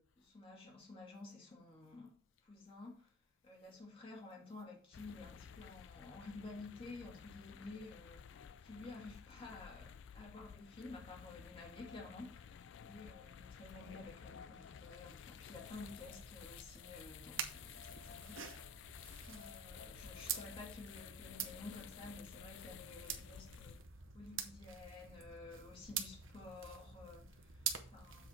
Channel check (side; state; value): both; normal; correlation 0.29